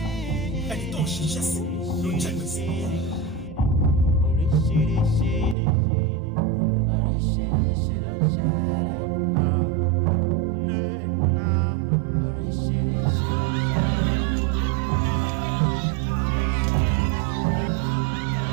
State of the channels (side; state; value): left; drops out; at 5.6 s